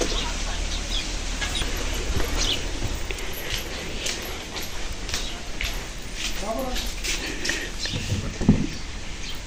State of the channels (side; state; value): both; identical; correlation 1.00